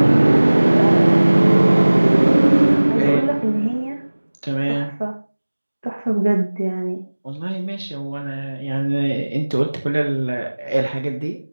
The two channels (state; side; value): inverted; both; correlation -1.00